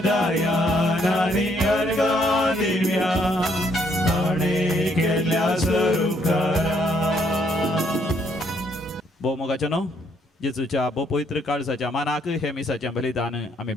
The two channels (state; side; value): normal; both; correlation 0.70